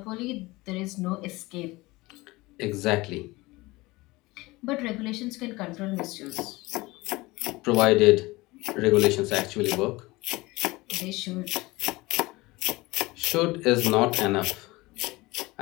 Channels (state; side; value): quieter; right; 21.5 dB